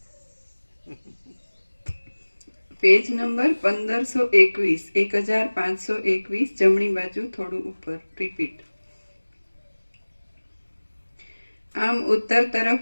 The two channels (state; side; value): inverted; both; correlation -1.00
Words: પેજ નંબર 1521, 1521, જમણી બાજુ થોડું ઉપર. રિપીટ. આમ ઉત્તર